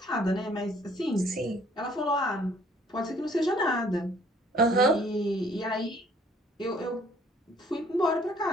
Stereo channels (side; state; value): both; normal; correlation 0.60